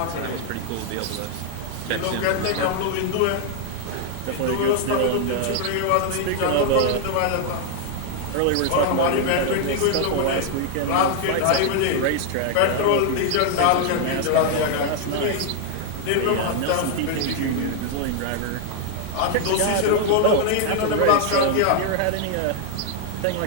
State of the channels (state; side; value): different; both; correlation 0.00